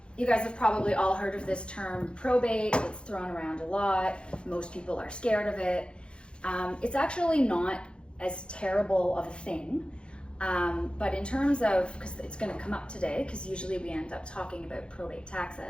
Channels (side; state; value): right; late; 0.056 ms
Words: you guys have probably all heard of this term probate. It's thrown around a lot. Most people are scared of it. It's actually not as terrible of a thing. But in terms of, because it's going to come up today, because usually we end up talking about probate